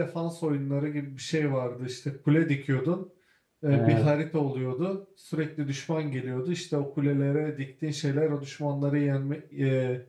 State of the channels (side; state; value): both; identical; correlation 1.00